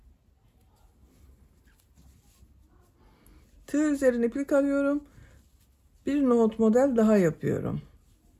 Tığ üzerine iplik alıyorum. Bir nohut model daha yapıyorum.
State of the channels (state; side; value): identical; both; correlation 1.00